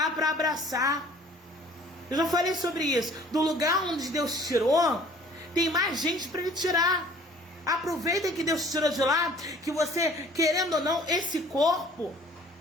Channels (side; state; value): both; normal; correlation 0.53